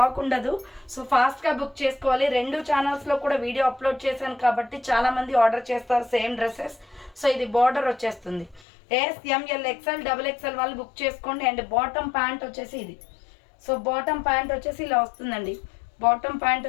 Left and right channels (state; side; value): drops out; right; at 8.6 s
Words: ఉండదు. సో ఫాస్ట్గా బుక్ చేసుకోవాలి. 2 ఛానల్స్లో కూడా వీడియో అప్లోడ్ చేశాను కాబట్టి చాలామంది ఆర్డర్ చేస్తారు సేమ్ డ్రెస్సెస్. సో ఇది బార్డర్ వచ్చేస్తుంది. SML XL డబుల్ ఎక్సెల్ వాళ్ళు బుక్ చేసుకోండి. అండ్ బాటమ్ ప్యాంట్ వచ్చేసి ఇది. సో బాటమ్ ప్యాంట్ వచ్చేసి ఇలా వస్తుందండి. బాటమ్ ప్యాంట్